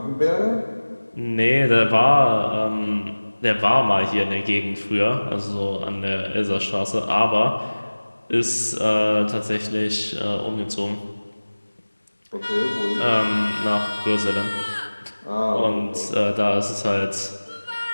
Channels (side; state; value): both; inverted; correlation -1.00